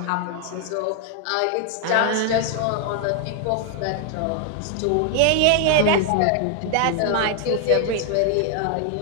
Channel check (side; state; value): both; different; correlation 0.00